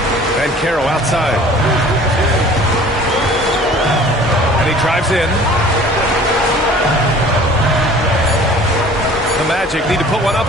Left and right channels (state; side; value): normal; both; correlation 0.48